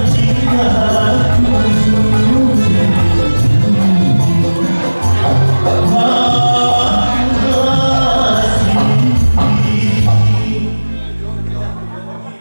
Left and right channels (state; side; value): inverted; both; correlation -1.00